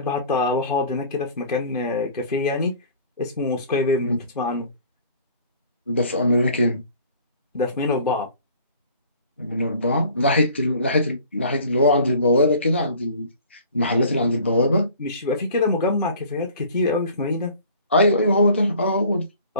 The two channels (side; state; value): both; inverted; correlation -0.49